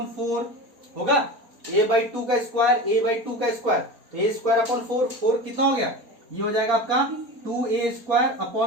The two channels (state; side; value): late; left; 4.3 ms